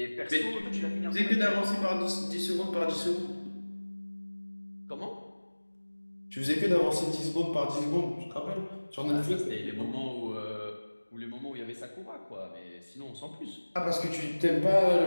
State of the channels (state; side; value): inverted; both; correlation -1.00